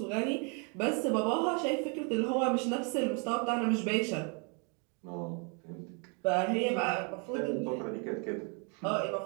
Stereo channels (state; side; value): quieter; left; 35.6 dB